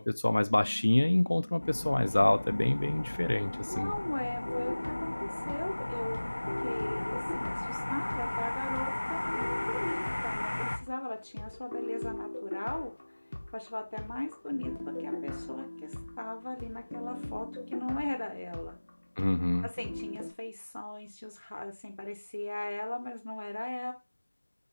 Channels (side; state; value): both; inverted; correlation -1.00